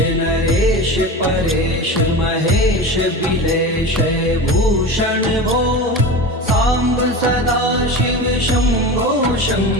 नरेश परेश महेश बिलेश भूषण भो साम्ब सदा शिव शम्भो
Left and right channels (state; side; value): normal; both; correlation 0.28